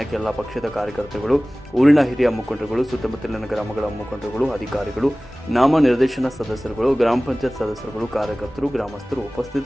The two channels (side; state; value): both; normal; correlation 0.98